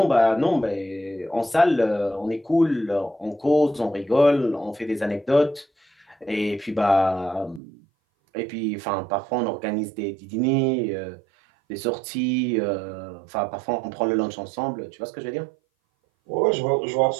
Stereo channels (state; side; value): drops out; left; at 7.6 s